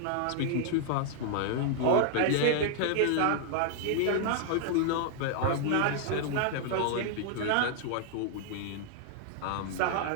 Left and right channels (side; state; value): both; different; correlation -0.01